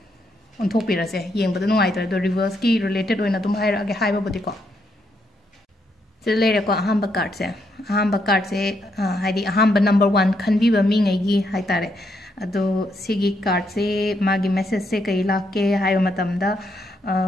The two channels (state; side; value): normal; both; correlation 0.77